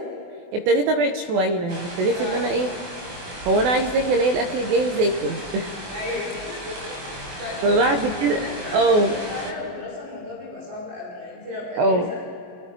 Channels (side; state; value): left; late; 22 ms